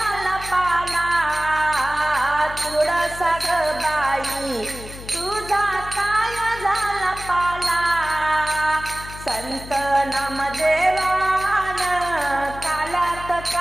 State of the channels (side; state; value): left; noise; hum, 13 dB below the sound